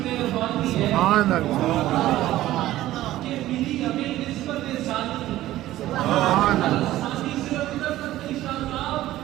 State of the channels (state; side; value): quieter; left; 15.0 dB